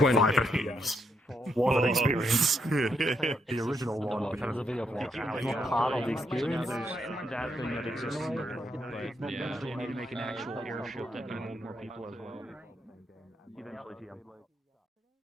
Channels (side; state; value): both; normal; correlation 0.77